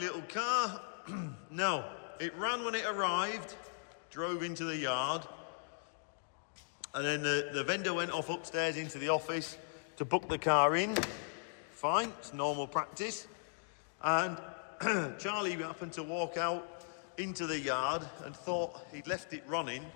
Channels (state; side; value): silent; right; digital silence